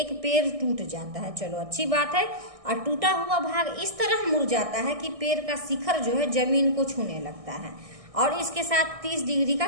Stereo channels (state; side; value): late; left; 1.6 ms